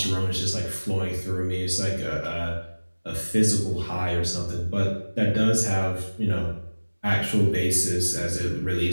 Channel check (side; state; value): both; inverted; correlation -1.00